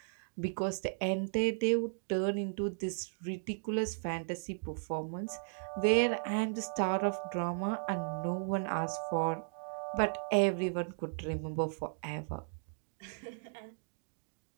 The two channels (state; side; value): silent; left; digital silence